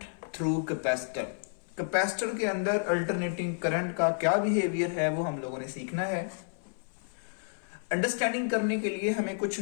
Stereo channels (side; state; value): right; silent; 57 dB below the other